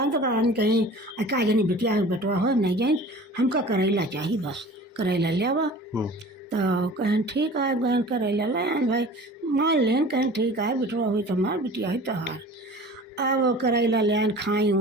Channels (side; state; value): both; normal; correlation 0.42